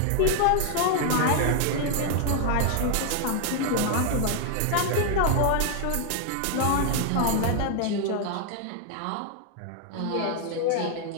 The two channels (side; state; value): both; different; correlation 0.00